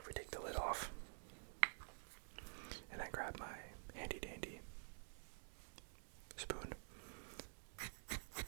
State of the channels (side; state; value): left; silent; digital silence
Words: we take the lid off, and I grab my handy dandy spoon,